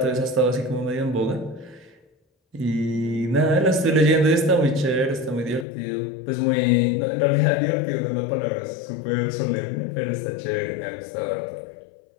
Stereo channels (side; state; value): right; drops out; at 5.7 s